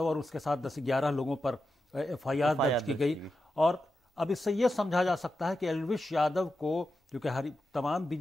और उसके साथ 10-11 लोगों पर FIR दर्ज की गई। और अब इससे यह समझा जा सकता है कि एल्विश यादव को, क्योंकि तमाम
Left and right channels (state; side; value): normal; both; correlation 0.89